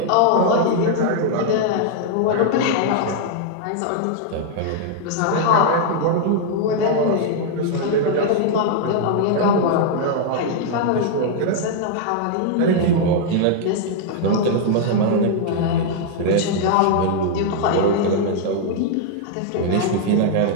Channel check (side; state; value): both; different; correlation -0.01